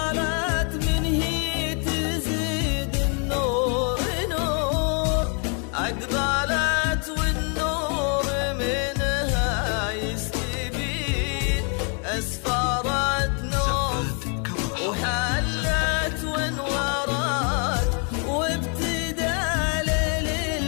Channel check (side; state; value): right; quieter; 39.2 dB